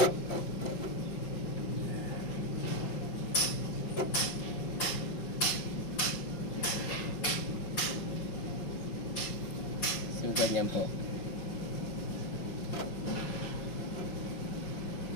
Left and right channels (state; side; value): late; right; 5.5 ms